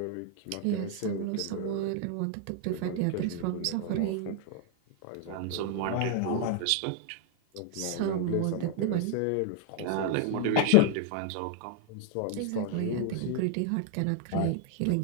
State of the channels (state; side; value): different; both; correlation 0.00